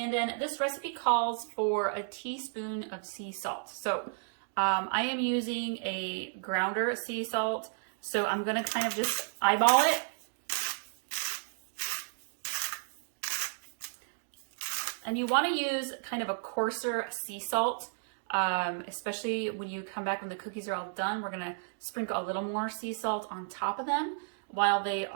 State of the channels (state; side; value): silent; left; digital silence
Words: then this recipe calls for a teaspoon of sea salt. So I am using a grounder sea salt. So I'm going to kind of just eyeball it. And you want to use kind of a coarser sea salt, especially when you come back when the cookies are all done. We're going to sprinkle a little more sea salt on top of them while they